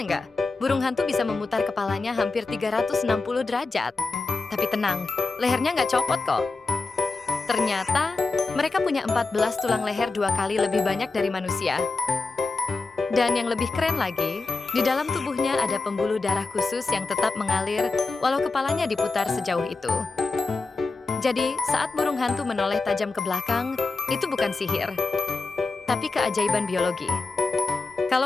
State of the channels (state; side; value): quieter; right; 3.8 dB